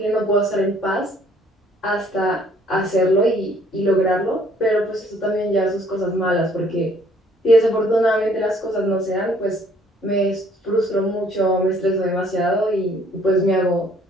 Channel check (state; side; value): normal; both; correlation 0.61